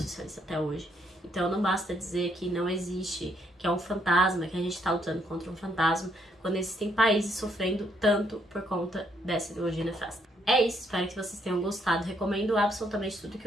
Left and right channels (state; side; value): normal; both; correlation 0.72